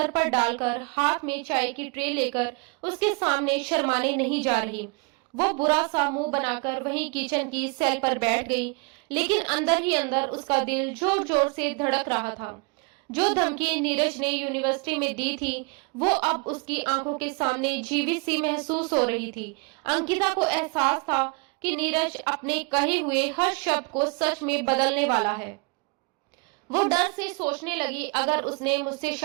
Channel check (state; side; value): quieter; left; 30.8 dB